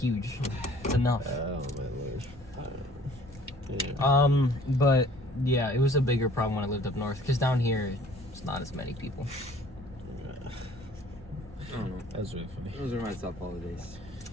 It's enough. Oh my lord. But yeah, it was a bigger problem when I lived up north because down here it's not as many people. I don't know. That was really funny. Those are my top holidays.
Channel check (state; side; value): normal; both; correlation 0.54